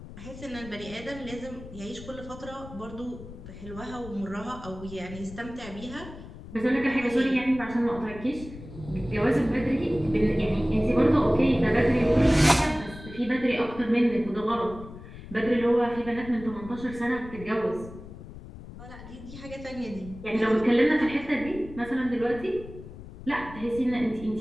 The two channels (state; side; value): noise; left; rumble, 14 dB below the sound